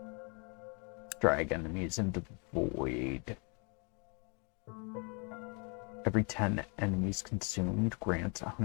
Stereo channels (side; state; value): right; quieter; 35.7 dB